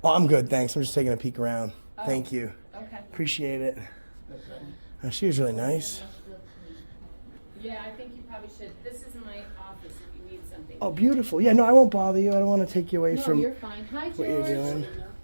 Oh, I'm good, thanks. I'm just taking a peek around. Thank you. Okay. Appreciate it. She was really nice. Yeah, I think you probably should. This is my office if you need something. Oh, beautiful. Yeah, no, I won't bother you. I don't want to take you away no, from you're fine. Hi, George. what you're doing.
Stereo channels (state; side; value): inverted; both; correlation -1.00